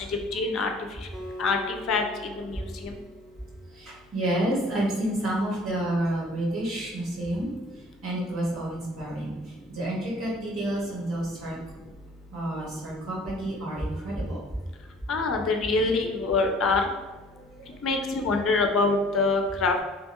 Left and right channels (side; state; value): both; normal; correlation 0.52